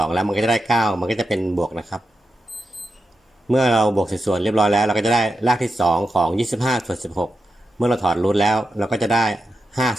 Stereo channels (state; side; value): normal; both; correlation 0.88